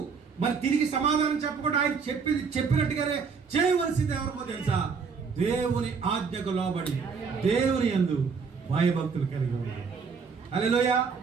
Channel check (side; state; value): left; quieter; 5.5 dB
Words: మరి తిరిగి సమాధానం చెప్పకుండా ఆయన చెప్పినట్టుగానే చేయవలసింది ఎవరికో తెలుసా? దేవుని ఆజ్ఞకు లోబడి దేవుని యందు భయభక్తులు కలిగి ఉండాలి. హల్లెలూయా.